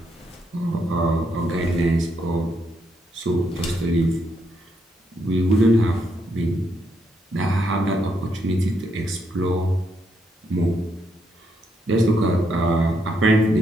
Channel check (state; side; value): normal; both; correlation 0.77